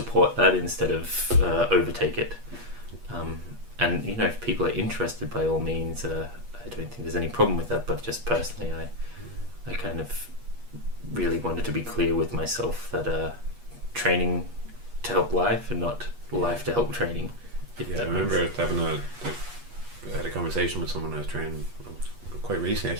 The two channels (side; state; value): left; late; 8.3 ms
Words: that instead of overtake it. And, you know, if people are interested, by all means, I don't think there's any problem with that, but just personally, I kind of really wanted to be clear with myself that training to help life and not life to help training. Yeah, I remember I had a conversation with someone I was training quite recently,